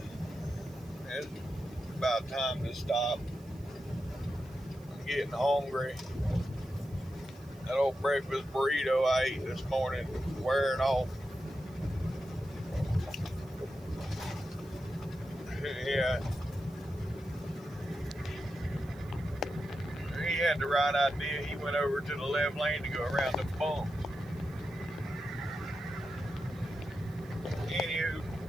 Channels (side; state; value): right; noise; hiss, 27 dB below the sound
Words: It's about time to stop. I'm getting hungry. That old breakfast burrito I ate this morning wearing off. Yeah. He had the right idea. He went over to the left lane to go around the bump. Anywho,